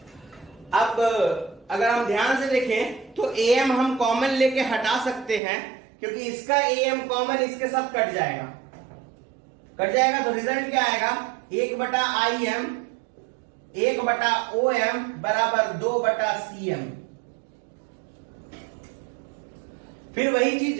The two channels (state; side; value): drops out; left; at 5.4 s